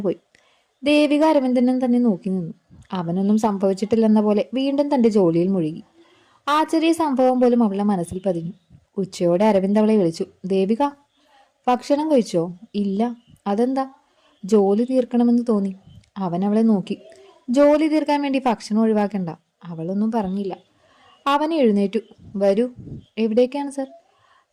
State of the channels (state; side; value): identical; both; correlation 1.00